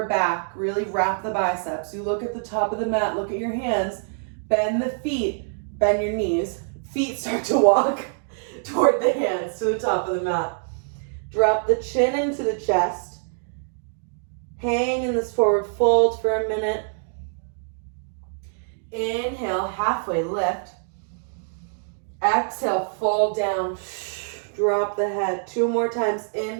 back. Really wrap the biceps. You look at the top of the mat. Look at your hands. Bend the feet. Bend your knees. Feet start to walk toward the hands to the top of the mat. Drop the chin into the chest. Hang in this forward fold for a minute. Inhale, halfway lift. Exhale, fold down. Drop the head. 2 more times.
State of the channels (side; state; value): left; silent; digital silence